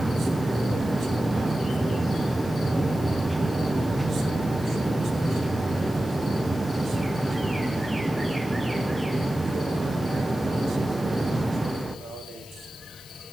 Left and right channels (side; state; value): left; noise; hiss, 20 dB below the sound